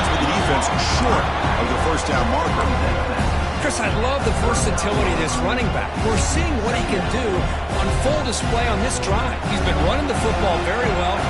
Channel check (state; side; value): identical; both; correlation 1.00